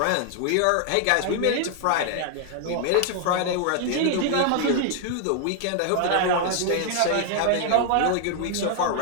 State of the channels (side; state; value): both; different; correlation 0.00